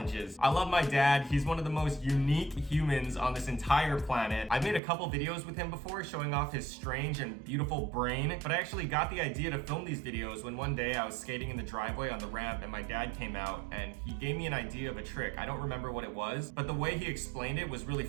I love my dad. He's one of the most unique humans on this entire planet. I've made a couple videos with him before showing off his strange and beautiful brain, but I actually got the idea to film these videos when one day I was skating in the driveway on the ramp and my dad came out and he gave me an idea of a trick. I don't remember what it was, but the way he explained it was really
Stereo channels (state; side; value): drops out; left; at 4.8 s